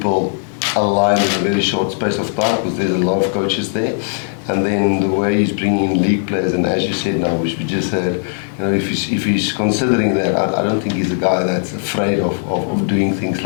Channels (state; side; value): silent; right; digital silence